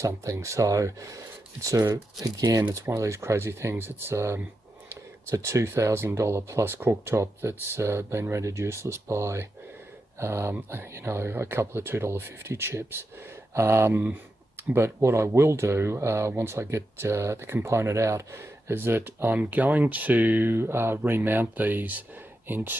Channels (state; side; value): normal; both; correlation 0.88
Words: So it's again, it's one of these crazy things. It's a $2,000 plus cooktop that's been rendered useless by, you know, a couple of $2.50 chips. But what I will do once I get the component out is that I'm going to remount these